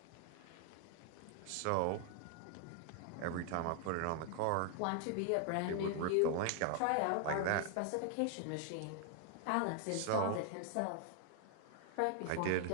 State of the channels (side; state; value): both; different; correlation 0.00